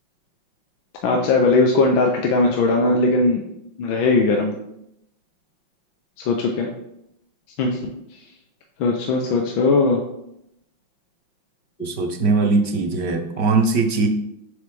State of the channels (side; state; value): right; late; 5.2 ms